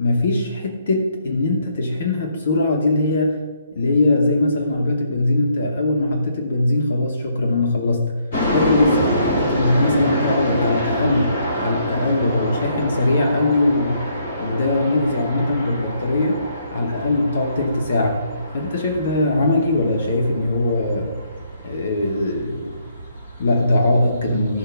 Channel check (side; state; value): both; inverted; correlation -0.72